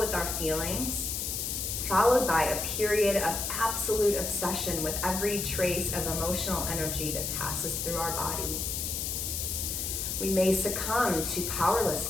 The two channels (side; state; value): left; noise; hiss, 2 dB below the sound